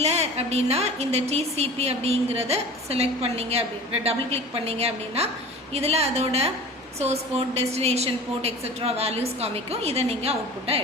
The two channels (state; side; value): normal; both; correlation 0.39